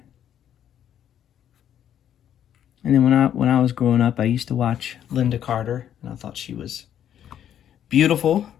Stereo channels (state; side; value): quieter; right; 10.1 dB